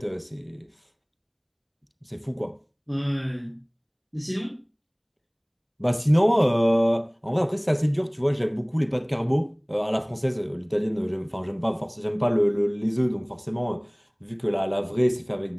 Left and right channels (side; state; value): both; identical; correlation 1.00